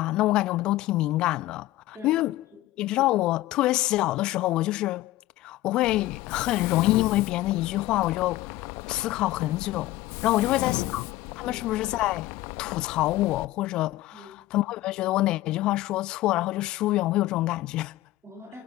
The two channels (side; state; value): right; quieter; 16.3 dB